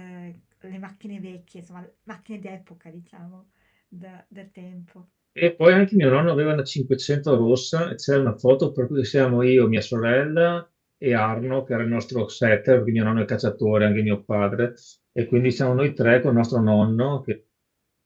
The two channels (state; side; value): identical; both; correlation 1.00